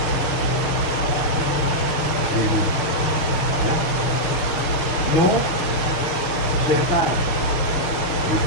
Ini. Ya. No kereta.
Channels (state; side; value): late; right; 6.3 ms